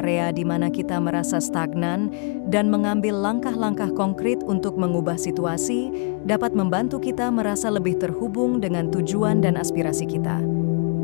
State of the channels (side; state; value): right; quieter; 35.9 dB